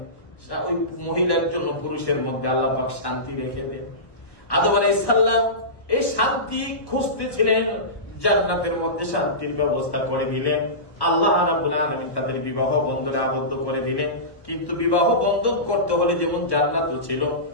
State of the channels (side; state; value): right; late; 1.2 ms